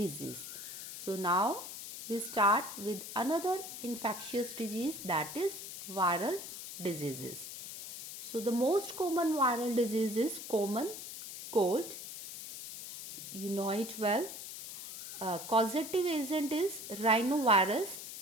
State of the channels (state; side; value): noise; left; hiss, 10 dB below the sound